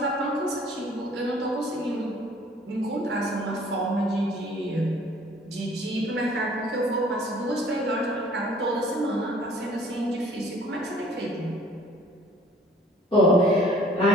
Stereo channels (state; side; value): normal; both; correlation 0.55